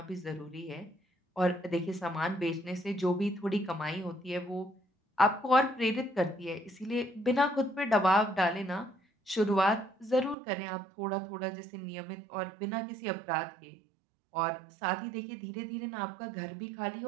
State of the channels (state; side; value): drops out; left; at 10.4 s